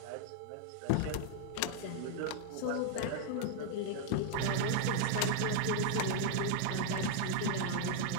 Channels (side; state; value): both; different; correlation 0.00